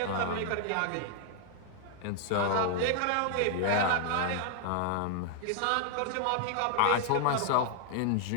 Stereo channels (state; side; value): different; both; correlation 0.00